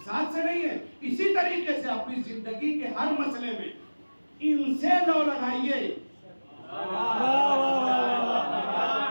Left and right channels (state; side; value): inverted; both; correlation -1.00